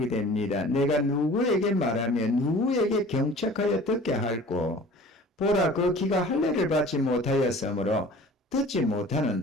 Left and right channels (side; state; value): both; normal; correlation 0.45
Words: 됩니다. 내가 누구에게 말하며 누구에게 경책하여 듣게 할꼬 보라 그 귀가 할례를 받지 못하였으므로 듣지